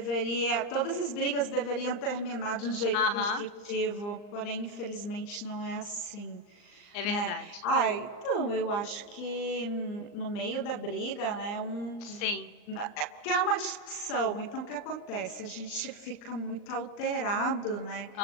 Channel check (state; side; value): late; right; 39 ms